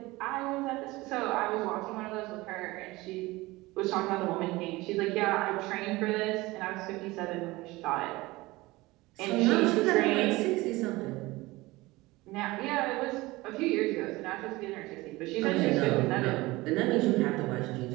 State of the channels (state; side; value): quieter; left; 20.7 dB